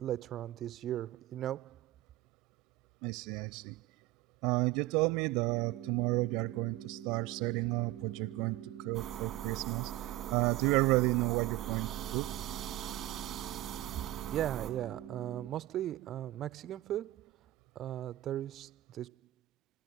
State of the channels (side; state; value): left; quieter; 16.9 dB